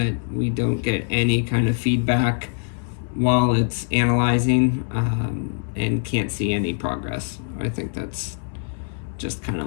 we don't get any kind of feedback while it's analyzing and can't see any progress. I think that's just kind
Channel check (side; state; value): right; silent; 61 dB below the other